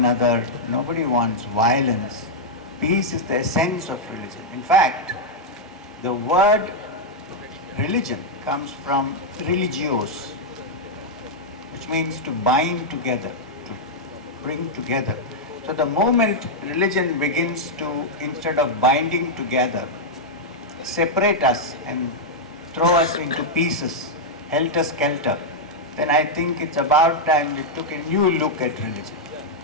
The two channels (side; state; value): both; normal; correlation -0.03